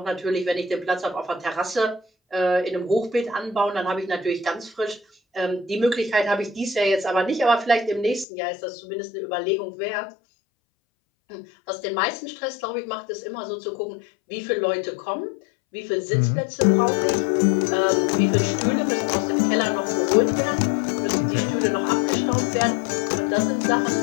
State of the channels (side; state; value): right; drops out; at 8.2 s